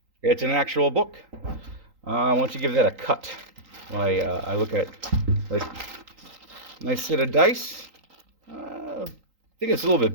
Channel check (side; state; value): left; late; 3.8 ms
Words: It's an actual book. Why don't you give that a cut? I look at nice set of dice. I think it's a little bit